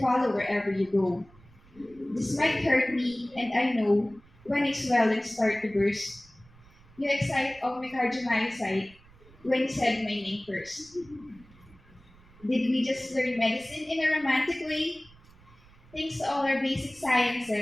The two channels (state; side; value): noise; right; rumble, 26 dB below the sound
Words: wherever you go. This might hurt me, and I know when I swell and start to burst. You excite all my cardiomyocyte when you said my name first. Did we just learn medicine in a romantic way? Thanks to all our basic